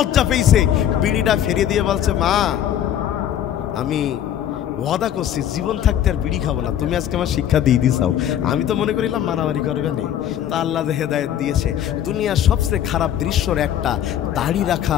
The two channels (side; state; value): right; quieter; 10.5 dB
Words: পেয়েছে, বিড়িটা ফেরিয়ে দিয়ে বলছে মা, আমি ওয়াদা করছি জীবন থাকতে আর বিড়ি খাবো না, তুমি আজকে আমার শিক্ষা দিয়ে দিছাও। আমি তো মনে করিলাম মারামারি করবে না, তা আল্লাহ হেদায়েত দিয়েছে। দুনিয়ার সবচেয়ে খারাপ দৃশ্যর একটা, দাড়ি রাখা,